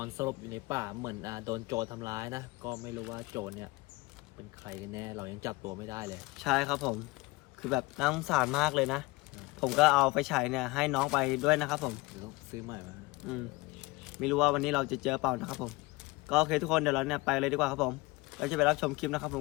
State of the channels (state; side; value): quieter; right; 22.9 dB